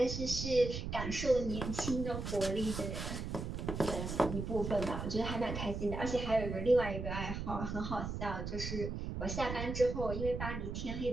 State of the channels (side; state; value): right; noise; rumble, 4 dB below the sound